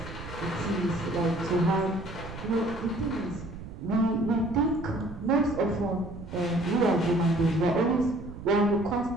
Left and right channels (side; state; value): right; noise; rumble, 12 dB below the sound